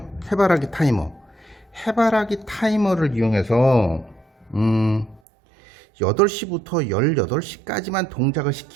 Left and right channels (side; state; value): left; drops out; at 5.2 s